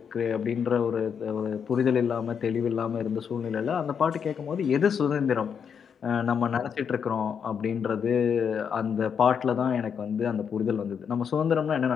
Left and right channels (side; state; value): right; quieter; 7.1 dB